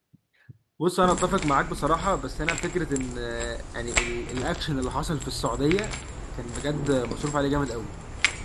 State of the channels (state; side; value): identical; both; correlation 1.00